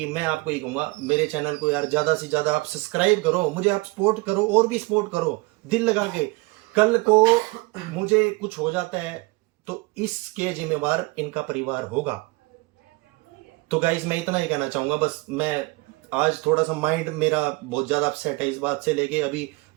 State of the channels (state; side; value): quieter; left; 25.1 dB